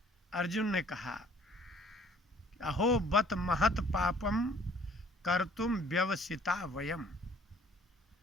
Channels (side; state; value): both; normal; correlation 0.57